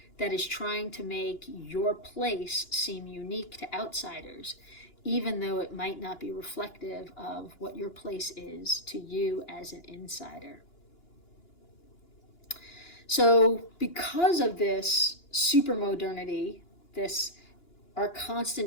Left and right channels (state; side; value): late; right; 2.9 ms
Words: that is trying to make your place seem unique to outsiders, even though it might not be reflective of what your place is to you as an insider. So because of this supermodernity, our